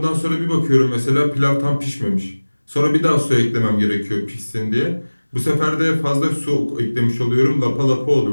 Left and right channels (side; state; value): both; inverted; correlation -1.00